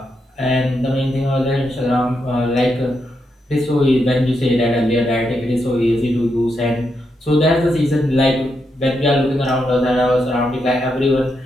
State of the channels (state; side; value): normal; both; correlation 0.83